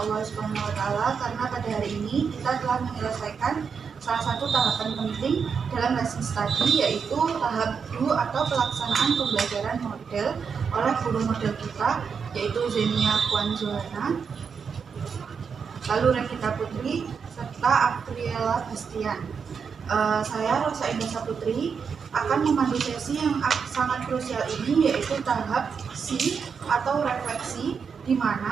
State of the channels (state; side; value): quieter; left; 6.1 dB